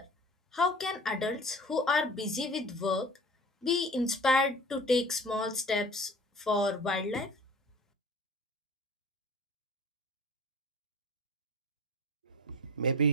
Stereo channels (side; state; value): both; normal; correlation 0.41